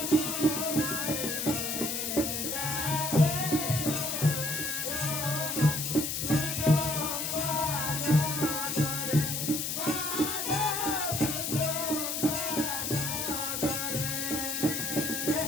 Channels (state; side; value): noise; left; hiss, 2 dB below the sound